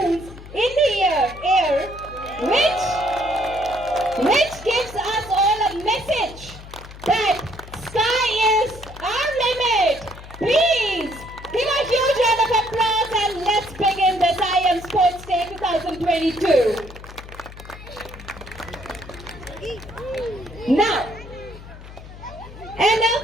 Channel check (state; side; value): noise; left; hum, 16 dB below the sound